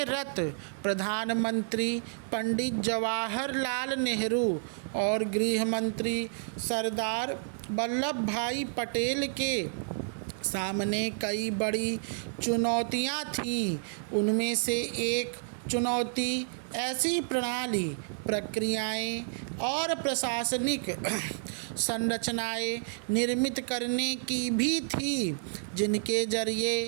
रत प्रधानमंत्री पंडित जवाहरलाल नेहरू और गृह मंत्री सरदार वल्लभ भाई पटेल के सामने कई बड़ी चुनौतियां थीं। उनमें से एक चुनौती ऐसी प्रणाली, प्रक्रियाएं और प्रशासनिक संरचनाएं निर्मित करने की भी थी जिनके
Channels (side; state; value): left; silent; 58 dB below the other